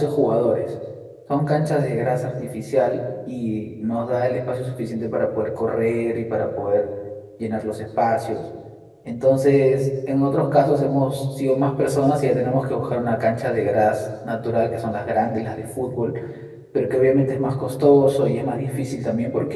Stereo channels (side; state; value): both; identical; correlation 1.00